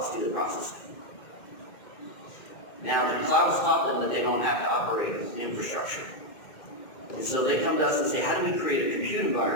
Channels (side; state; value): right; late; 2.1 ms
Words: do the processing. Now, the cloud's taught them that they don't have to operate infrastructure. And so they come to us and say, how do we create a compute